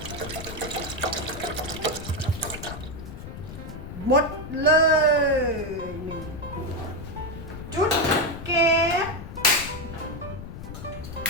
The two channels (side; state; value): left; noise; rumble, 11 dB below the sound